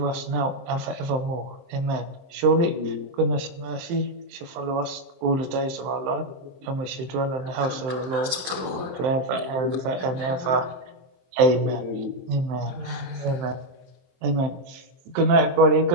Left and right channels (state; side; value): late; left; 23 ms